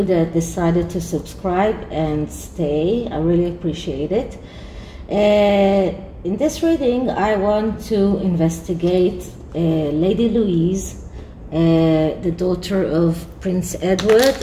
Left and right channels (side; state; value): both; identical; correlation 1.00